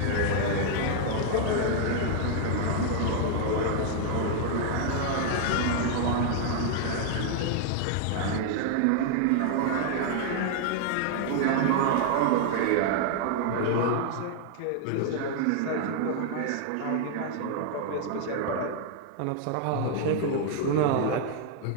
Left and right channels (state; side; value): different; both; correlation 0.00